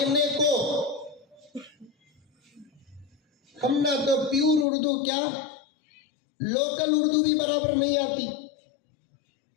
को। हम ना तो प्योर उर्दू, क्या लोकल उर्दू भी बराबर नहीं आती,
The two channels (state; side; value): drops out; right; at 4.7 s